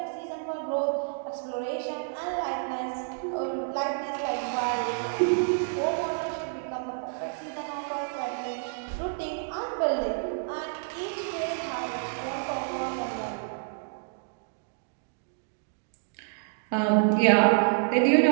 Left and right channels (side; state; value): left; silent; digital silence